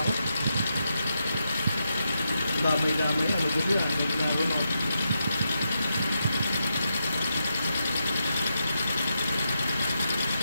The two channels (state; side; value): inverted; both; correlation -0.85